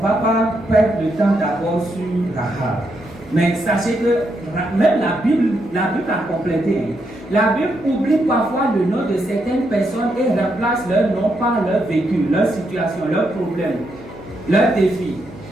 va pas perdre le temps d'abord sur Rahab. Mais sachez que même la Bible a complété. La Bible oublie parfois le nom de certaines personnes et remplace leur nom par leur vécu, leur situation, leurs problèmes, leurs défis.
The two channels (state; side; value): normal; both; correlation 0.80